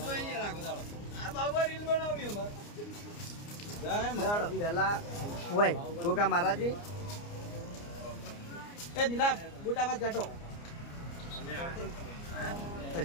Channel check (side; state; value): right; late; 29 ms